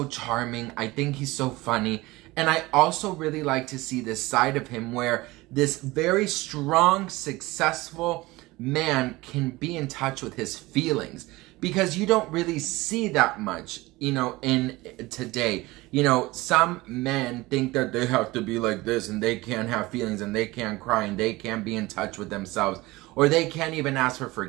charming. I think he's so funny. And I also really like to see this side of him where this very strong, successful man can be in touch with his feelings. Because you don't really see that much, you know, in today. You know, some men think that they have to be like this and they can't have feelings and they can't cry and they can't be in touch with themselves. Or they can't even ask for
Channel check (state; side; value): quieter; left; 20.5 dB